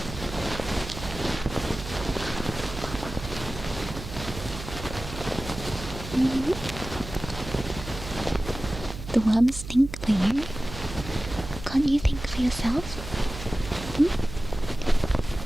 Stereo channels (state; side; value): noise; right; hum, 10 dB below the sound